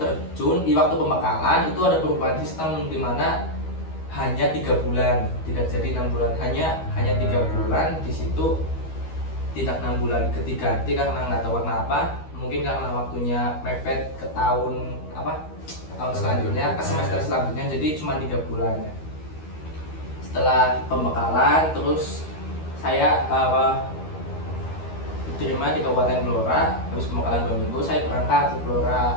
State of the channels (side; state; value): right; late; 13 ms